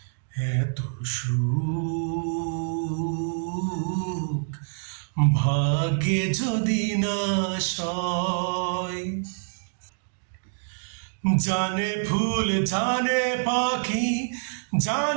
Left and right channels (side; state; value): left; silent; digital silence